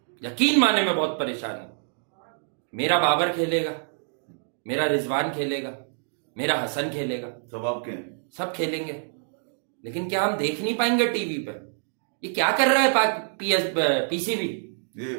यकीन माने मैं बहुत परेशान हूं। मेरा बाबर खेलेगा, मेरा रिजवान खेलेगा, मेरा हसन खेलेगा, सब आपके हैं। सब खेलेंगे, लेकिन क्या हम देख नहीं पाएंगे टीवी पे? ये क्या कर रहा है पीसीबी? ये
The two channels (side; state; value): left; silent; digital silence